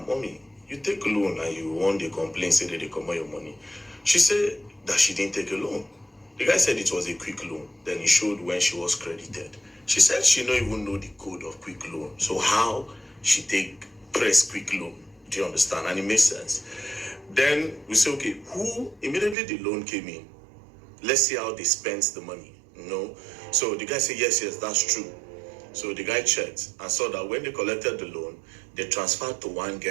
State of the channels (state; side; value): drops out; left; at 19.4 s